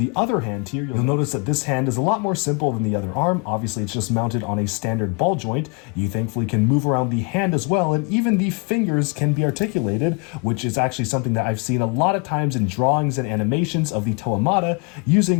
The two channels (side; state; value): right; quieter; 32.5 dB